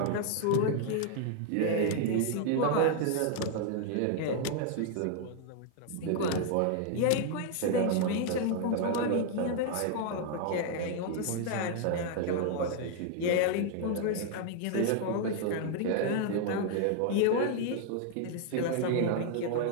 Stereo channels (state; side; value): different; both; correlation 0.00